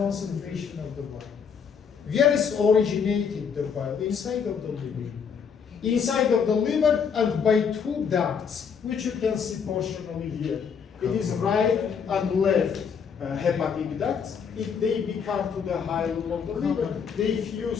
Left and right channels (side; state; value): right; quieter; 6.6 dB